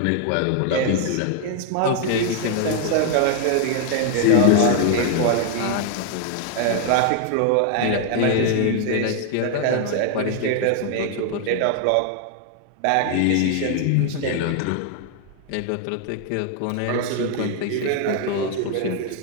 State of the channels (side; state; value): both; different; correlation 0.00